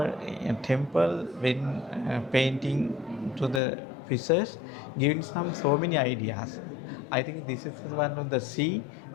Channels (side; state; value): right; drops out; at 3.6 s